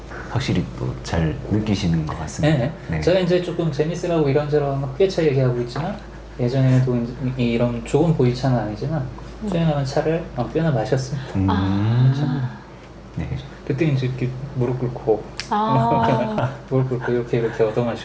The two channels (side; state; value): both; identical; correlation 1.00